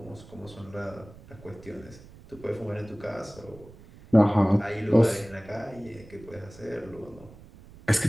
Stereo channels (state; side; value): noise; right; rumble, 20 dB below the sound